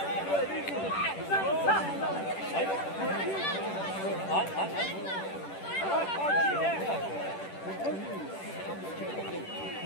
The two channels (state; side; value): late; right; 10 ms